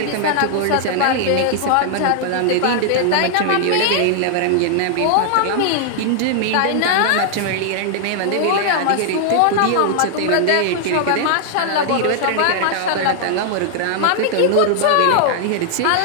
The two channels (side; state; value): both; different; correlation 0.00